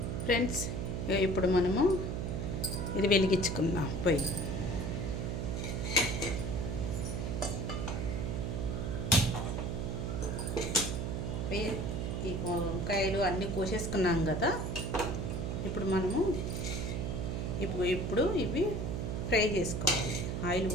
ఫ్రెండ్స్. ఇప్పుడు మనము ఇది వెలిగించుకుందాం పొయ్యి. ఈ వంకాయలు అన్నీ కోసేసుకున్నాం కదా. ఇప్పుడు మనము ఇప్పుడు ఇవి ఫ్రై చేసుకోవాలి. ఆయిల్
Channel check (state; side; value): noise; right; hum, 2 dB below the sound